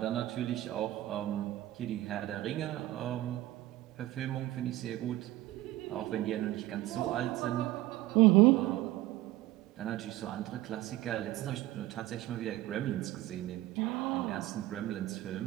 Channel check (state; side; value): quieter; left; 16.3 dB